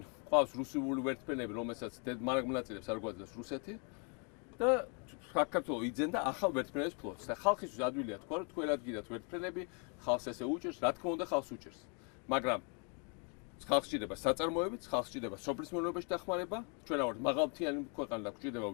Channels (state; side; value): quieter; right; 37.5 dB